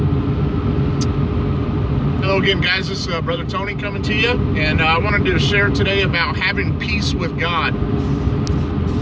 again, guys. This is Brother Tony coming to you, and I wanted to share today about having peace with God.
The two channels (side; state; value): both; identical; correlation 1.00